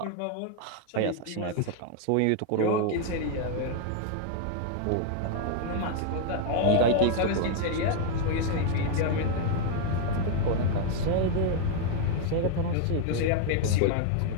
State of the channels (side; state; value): both; different; correlation 0.00